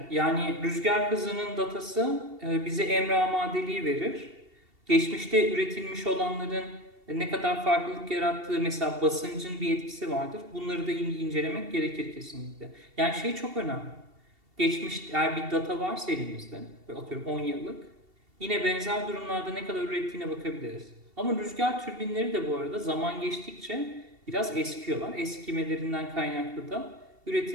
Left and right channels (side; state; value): left; late; 2.7 ms